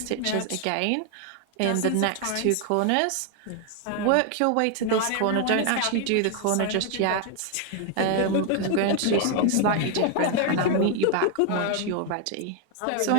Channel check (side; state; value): both; different; correlation 0.00